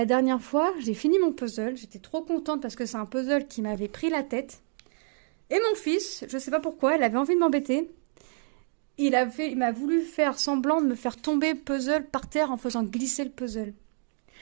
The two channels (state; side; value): silent; left; 59 dB below the other